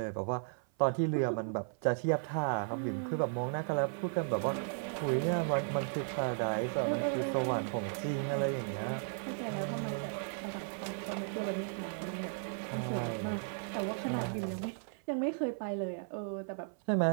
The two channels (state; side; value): silent; left; 54 dB below the other